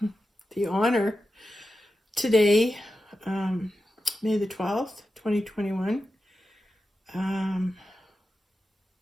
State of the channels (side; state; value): both; normal; correlation 0.91